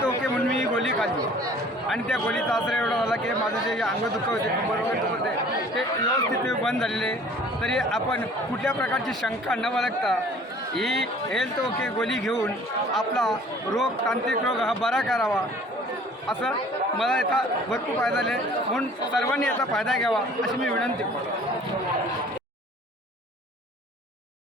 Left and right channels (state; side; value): normal; both; correlation 0.51